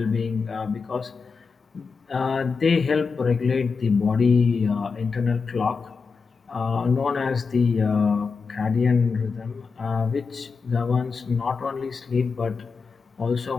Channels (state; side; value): quieter; right; 5.0 dB